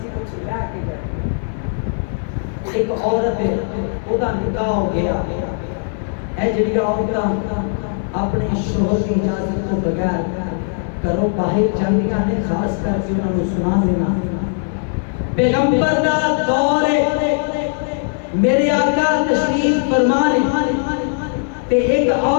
کچھ لے کے جائے ایک عورت ہے او دا نکاح ہو گیا اے جڑی عورتاں اپنے شوہر کی اجازت تو بغیر کرو باہر جاندیاں نے خاص کر کے انہاں نوں سنا دینا پیغمبر دا دور ہے میرے آقا تشریف فرما نے تے ایک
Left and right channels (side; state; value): right; silent; 65 dB below the other